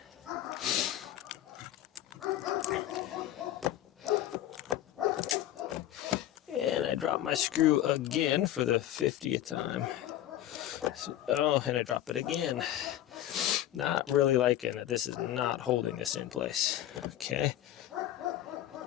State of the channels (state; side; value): quieter; right; 12.9 dB